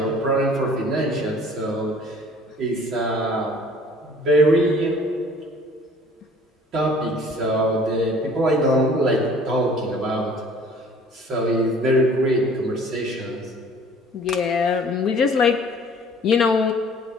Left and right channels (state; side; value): normal; both; correlation 0.52